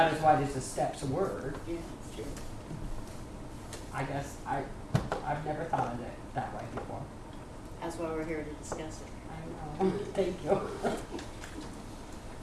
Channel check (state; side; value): identical; both; correlation 1.00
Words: as wide as the steps were. Yeah, it's true. I guess I've never thought of it that way before. That's why we're here to discuss it. I know. Thank you.